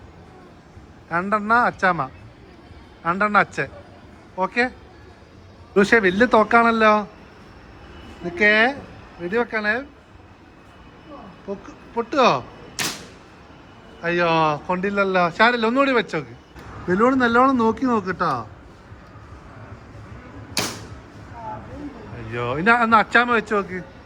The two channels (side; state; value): both; identical; correlation 1.00